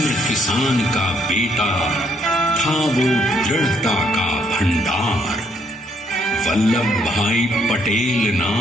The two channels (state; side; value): normal; both; correlation 0.70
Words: किसान का बेटा था वो दृढ़ता का भंडार. वल्लभ भाई पटेल